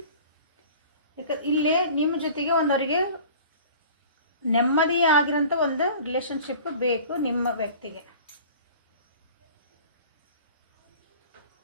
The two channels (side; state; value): both; inverted; correlation -0.44